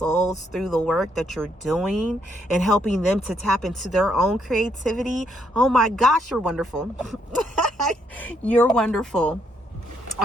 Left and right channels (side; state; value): both; normal; correlation 0.74